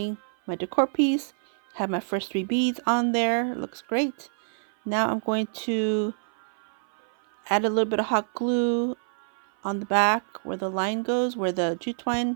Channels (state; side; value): silent; left; 56 dB below the other